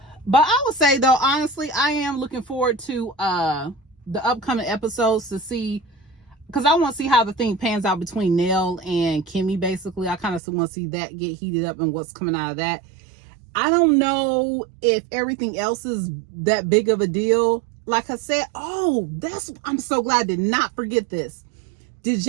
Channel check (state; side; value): drops out; left; at 10.4 s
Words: But I would say, though, honestly, I am looking forward to the upcoming episodes to see, because I want to see how the thing pans out between Nell and Kimmy. Basically, I kind of want to see that get heated up and what's coming out of that. I don't know if everything else is that big of a deal. Like I said, I'm so glad I did not forget this. Did